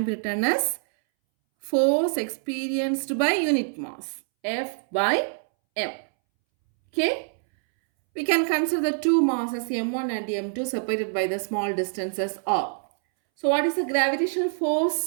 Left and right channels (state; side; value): silent; left; 62 dB below the other